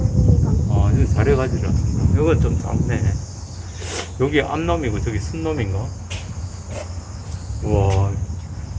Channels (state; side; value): identical; both; correlation 1.00